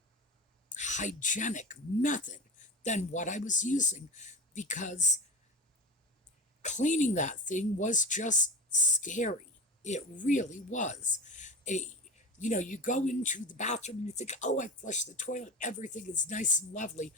hygienic method than what I was using, because cleaning that thing was just scary. It really was. You go into the bathroom and you think, oh, I flushed the toilet, everything is nice and lovely.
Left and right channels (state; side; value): normal; both; correlation 0.27